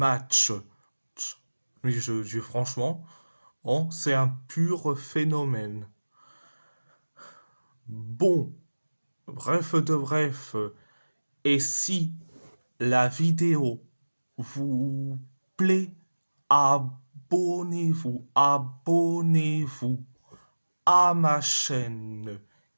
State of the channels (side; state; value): both; inverted; correlation -1.00